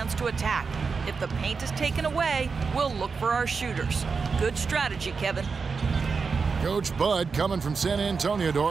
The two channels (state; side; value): quieter; left; 5.1 dB